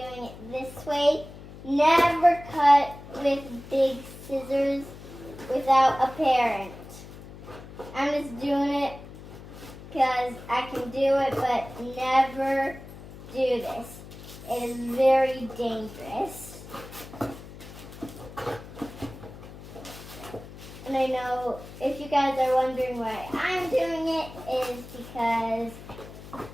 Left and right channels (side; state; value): left; noise; hum, 15 dB below the sound